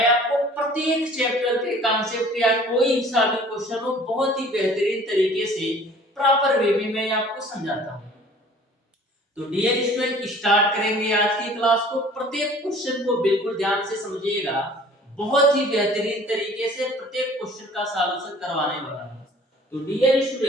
आपको प्रत्येक चैप्टर के कॉन्सेप्ट या कोई सा भी क्वेश्चन हो बहुत ही बेहतरीन तरीके से प्रॉपर वे में मैं आपको समझाता हूं। तो डियर स्टूडेंट, स्टार्ट करेंगे आज की क्लास को। प्रत्येक क्वेश्चन को बिल्कुल ध्यान से समझिएगा। बहुत ही बेहतरीन तरीके से प्रत्येक क्वेश्चन का सॉल्यूशन करवाने वाला हूं। तो डियर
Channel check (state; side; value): normal; both; correlation 0.50